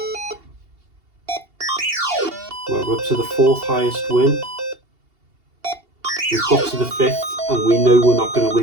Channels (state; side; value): late; left; 2.8 ms